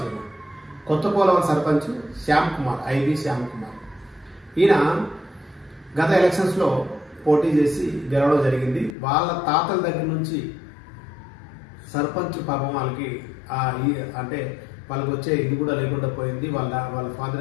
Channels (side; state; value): right; drops out; at 9.0 s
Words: సర్పంచ్ శ్యామ్ కుమార్, ఐవి శ్యామ్ కుమార్. ఈయన గత ఎలక్షన్స్ లో పోటీ చేసి గెలవడం జరిగింది. వాళ్ళ తాతల దగ్గర నుంచి సర్పంచ్ పాపం వాళ్ళకి అంటే వాళ్ళకి వచ్చే ఇది కూడా లేకుండా పోయింది. వాళ్ళ ఫాదర్